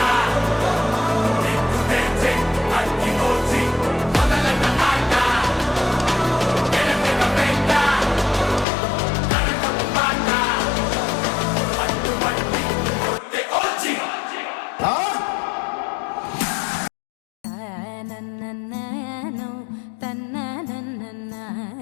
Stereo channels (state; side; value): drops out; right; at 8.7 s